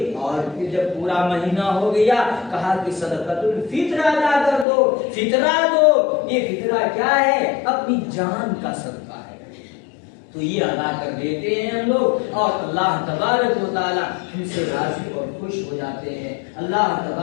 اور پھر جب پورا مہینہ ہو گیا کہا کہ صدقۃ الفطر ادا کر دو، فطرہ دو۔ یہ فطرہ کیا ہے؟ اپنی جان کا صدقہ ہے۔ تو یہ ادا کر دیتے ہیں ہم لوگ، اور اللہ تبارک و تعالی ہم سے راضی اور خوش ہو جاتے ہیں۔ اللہ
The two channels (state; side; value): drops out; right; at 4.7 s